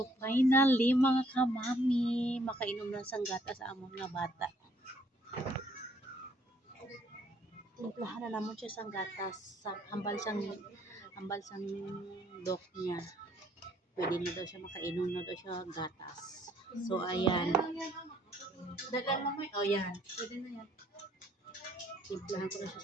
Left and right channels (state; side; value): normal; both; correlation 0.65